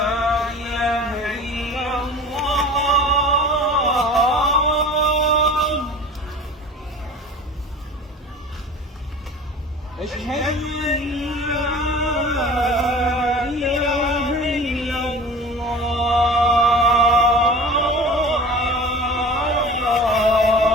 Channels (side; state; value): both; normal; correlation 0.39